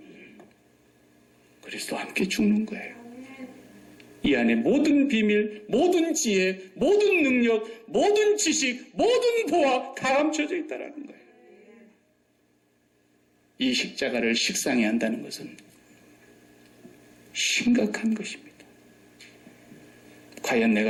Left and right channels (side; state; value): both; identical; correlation 1.00